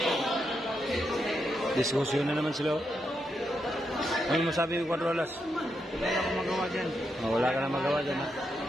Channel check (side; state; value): both; normal; correlation 0.83